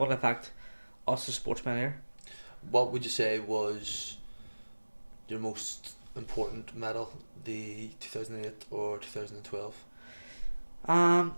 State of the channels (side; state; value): both; inverted; correlation -1.00